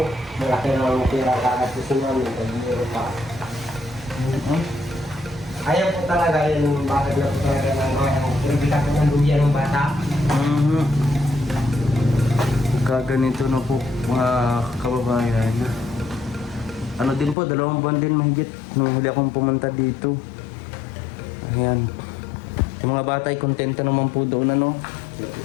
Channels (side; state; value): right; drops out; at 17.4 s